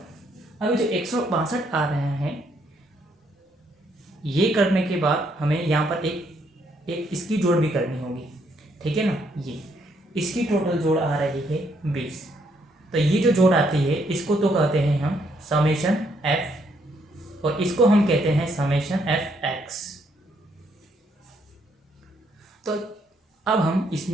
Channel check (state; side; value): normal; both; correlation 0.72